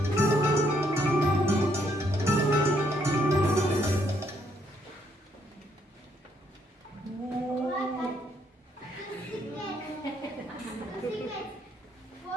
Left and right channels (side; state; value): both; normal; correlation 0.71